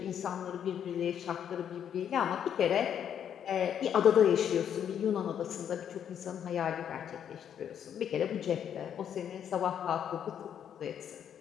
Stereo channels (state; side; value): quieter; right; 9.0 dB